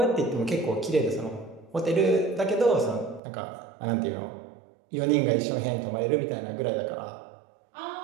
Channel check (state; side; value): drops out; left; at 3.2 s